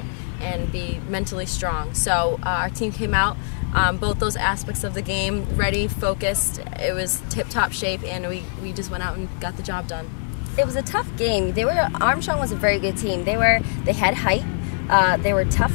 and be mentally strong. So our team came out, both those aspects of the game, ready, focused. It was tip-top shape, and we just went out and got the job done. It was a tough game. Armstrong was a very good team. They had height. They were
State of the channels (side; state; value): right; silent; digital silence